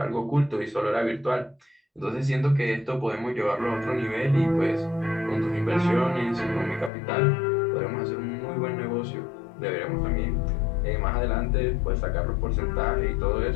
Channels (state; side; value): drops out; right; at 6.9 s